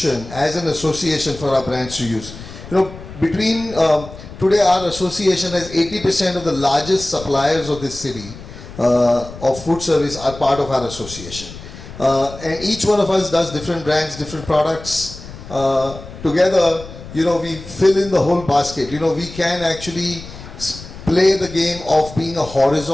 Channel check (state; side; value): noise; left; rumble, 15 dB below the sound